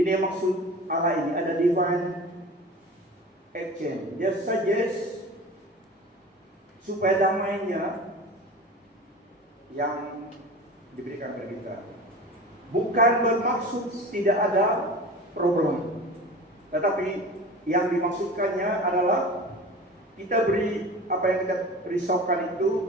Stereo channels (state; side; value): normal; both; correlation 0.35